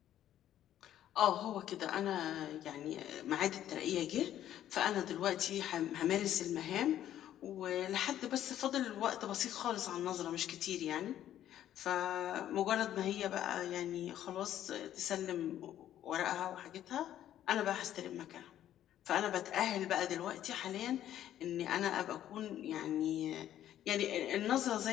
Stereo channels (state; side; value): quieter; right; 11.6 dB